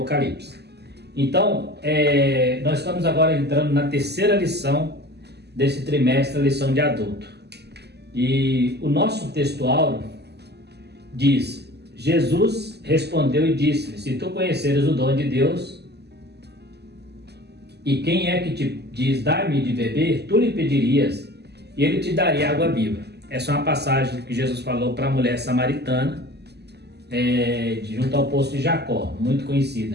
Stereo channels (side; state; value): left; late; 0.49 ms